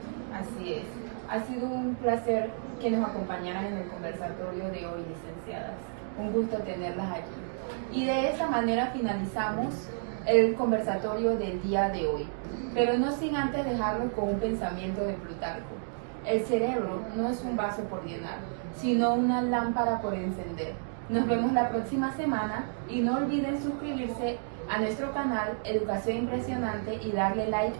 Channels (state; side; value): silent; left; digital silence